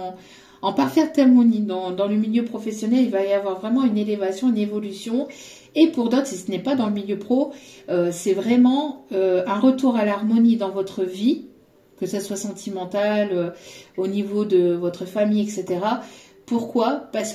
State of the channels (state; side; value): identical; both; correlation 1.00